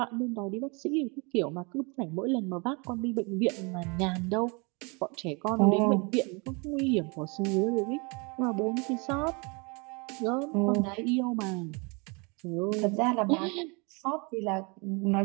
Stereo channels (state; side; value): quieter; left; 30.7 dB